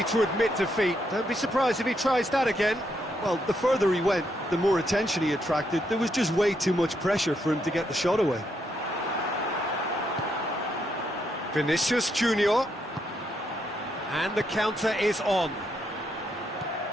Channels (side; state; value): both; normal; correlation 0.78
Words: to admit defeat. Don't be surprised if he tries that again. Well, the further he went, the more attention he attracted. There was just way too much pressure for him to get the shot away. Vinicius Junior. And the counter is on.